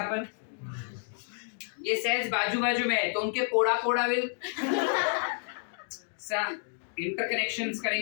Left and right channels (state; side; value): silent; right; 58 dB below the other